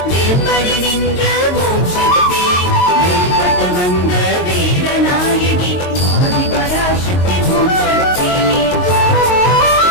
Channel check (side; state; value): right; late; 22 ms